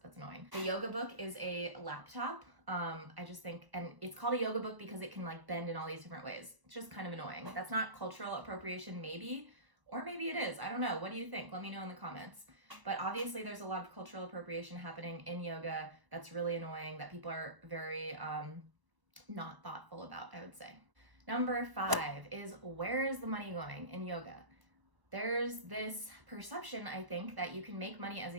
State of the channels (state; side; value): late; left; 1.0 ms